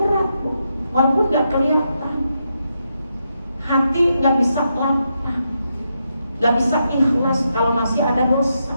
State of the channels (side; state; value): both; inverted; correlation -0.83